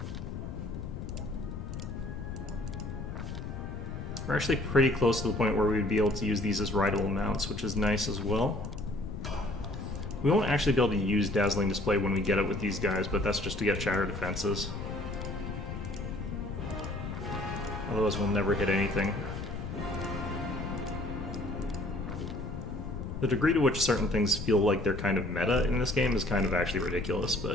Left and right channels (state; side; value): noise; left; rumble, 7 dB below the sound